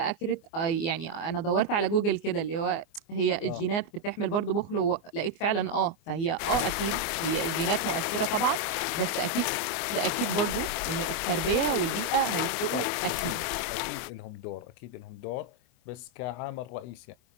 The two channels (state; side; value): late; right; 24 ms